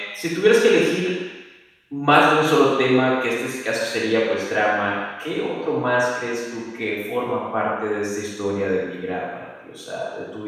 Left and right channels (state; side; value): identical; both; correlation 1.00